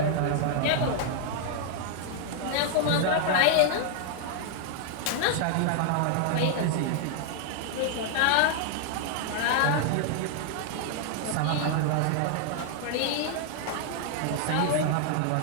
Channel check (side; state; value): both; different; correlation 0.00